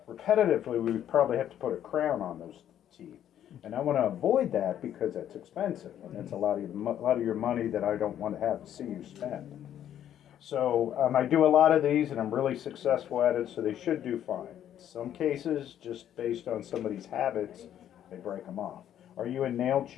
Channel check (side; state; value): right; quieter; 10.6 dB